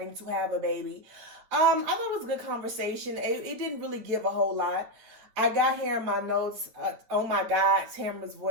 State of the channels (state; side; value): late; left; 10 ms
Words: to have a baby. I thought it was a good conversation. It didn't really give a whole lot. I got here in my notes, oh my God, Tamra's